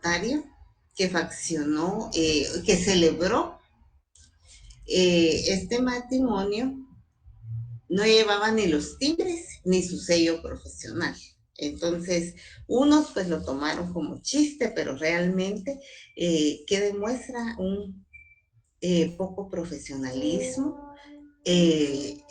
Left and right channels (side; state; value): both; identical; correlation 1.00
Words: que faccionó, que celebró este matrimonio, no llevaba ni los timbres ni su sello profesional. Entonces, unos pues lo tomaron como chiste, pero realmente que demuestra un poco profesionalismo.